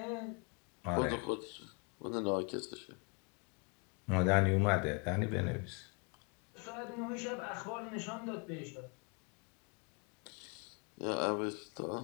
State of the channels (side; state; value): right; quieter; 33.6 dB